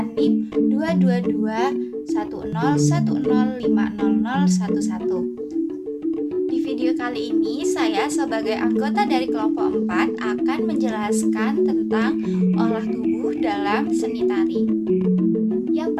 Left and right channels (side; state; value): both; identical; correlation 1.00